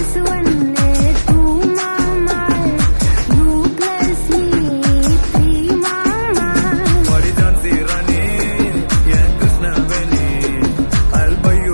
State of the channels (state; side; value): inverted; both; correlation -1.00